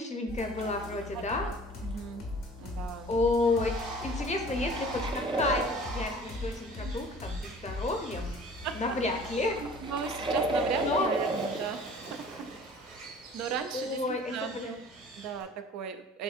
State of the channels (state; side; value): normal; both; correlation 0.47